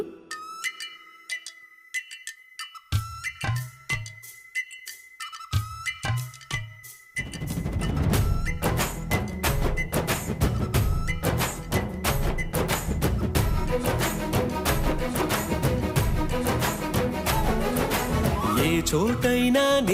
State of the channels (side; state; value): both; identical; correlation 1.00